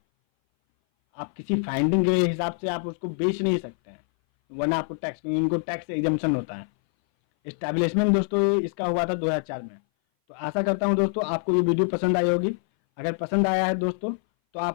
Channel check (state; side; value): silent; right; 58 dB below the other